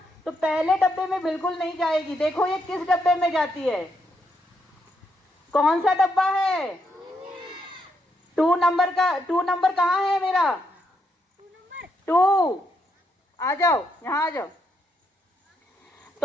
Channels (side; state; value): both; normal; correlation 0.78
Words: तो पहले डब्बे में बिल्कुल नहीं जाएगी। देखो ये किस डब्बे में जाती है, कौन सा डब्बा है? 2 नंबर का। 2 नंबर कहाँ है मेरा? 2। आ जाओ, यहाँ आ जाओ।